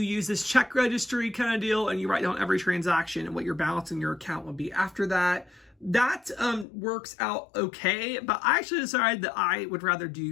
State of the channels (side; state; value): right; drops out; at 6.7 s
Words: this check registry kind of deal, and you write down every transaction and what your balance in your account will be after that. That works out okay, but I actually decided that I would rather